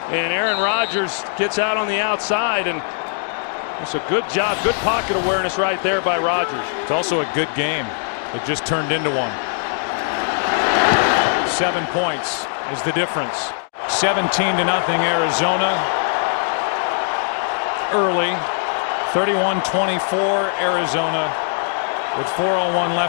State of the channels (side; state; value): right; silent; digital silence